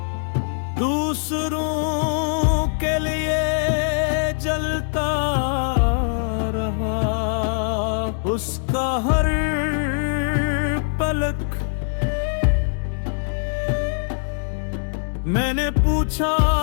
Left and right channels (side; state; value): right; silent; 64 dB below the other